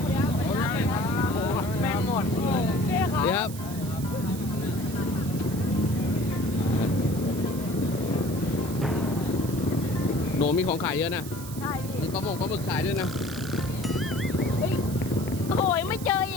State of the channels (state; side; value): noise; right; hiss, 13 dB below the sound